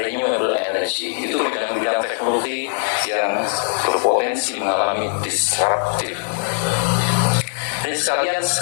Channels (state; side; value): silent; right; 65 dB below the other